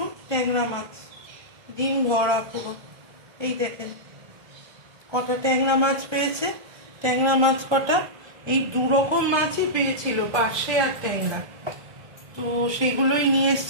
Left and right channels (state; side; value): late; left; 1.3 ms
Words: ট্যাংরা মাছ, ডিম ভরা পুরো। এই দেখেন কটা ট্যাংরা মাছ পেয়েছে। ট্যাংরা মাছ কটা, এই দু রকম মাছই পেয়েছিল, পার্শে আর ট্যাংরা। তো সেগুলোই নিয়ে